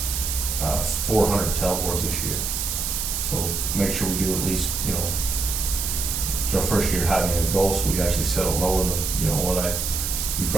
400 tailboards this year. So make sure we do at least, you know, it's our first year having a goal, so we actually set it lower than, you know, what we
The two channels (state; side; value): noise; right; hiss, 2 dB below the sound